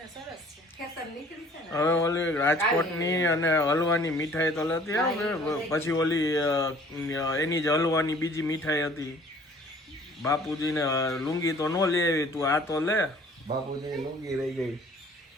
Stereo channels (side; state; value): both; normal; correlation 0.53